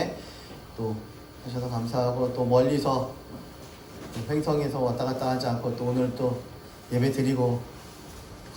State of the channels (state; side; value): identical; both; correlation 1.00